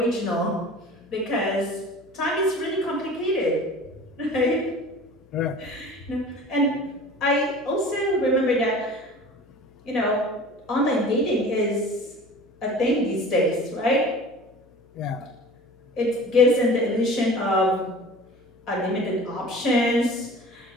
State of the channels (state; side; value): noise; left; hum, 30 dB below the sound